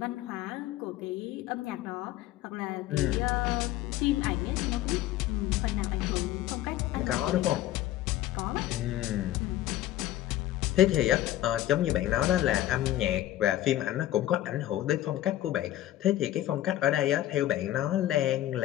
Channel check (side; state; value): right; quieter; 13.8 dB